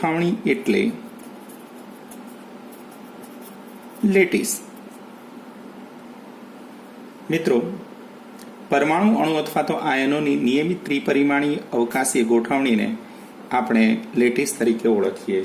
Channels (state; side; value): identical; both; correlation 1.00